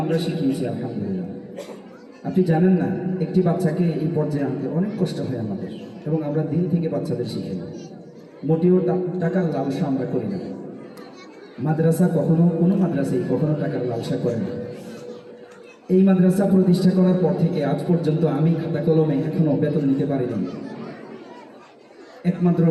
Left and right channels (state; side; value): identical; both; correlation 1.00